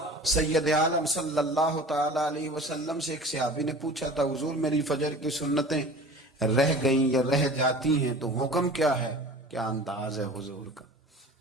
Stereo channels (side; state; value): both; normal; correlation 0.41